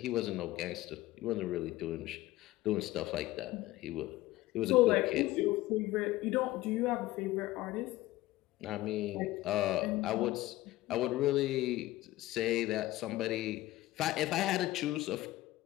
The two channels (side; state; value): right; quieter; 17.1 dB